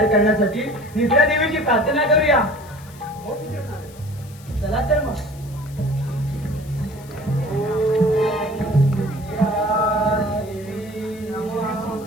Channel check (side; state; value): left; noise; hiss, 23 dB below the sound